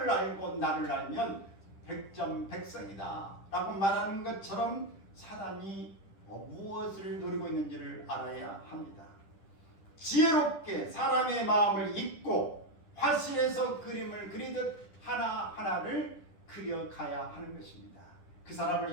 알고 나를 알면 백전백승이다 라고 말하는 것처럼 사단이 무엇을 노리고 있는지를 알아야 합니다. 지혜롭게 사람의 마음을 읽고 화실에서 그림을 그리듯 하나하나를 그려가야 하는 것입니다. 그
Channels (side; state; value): right; late; 10 ms